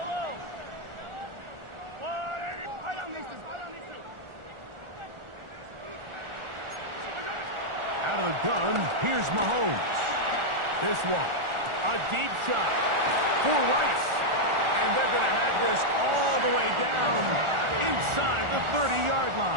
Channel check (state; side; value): late; left; 1.4 ms